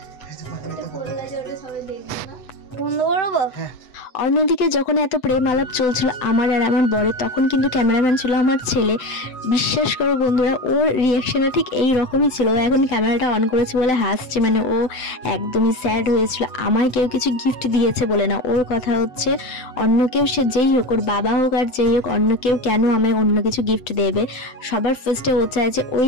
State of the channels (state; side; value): late; right; 7.9 ms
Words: অন্যদিকে যখন এত প্রেম আলাপ চলছিল আমার আর আমার বরের, তখন কিন্তু ক্যামেরাম্যান ছিল আমার ছেলে। বিশ্বাস করো বন্ধুরা, ওর রিয়াকশনটা ঠিক এই রকমই ছিল। ও এখন ক্যামেরাটা অন করেছে বলে হাসছে, মানে ও একদমই স্যাড হয়েছিল। আমায় কেউ কিছু গিফট দিয়েছে বলে না, ওর কথা হচ্ছে অন্য কেউ, সে যেই হোক, ওর বাবা হোক আর যেই হোক, অন্য কেউ কেন আমায় অন্য কিছু গিফট দেবে। সবার ফার্স্টে ও চায় যে ওই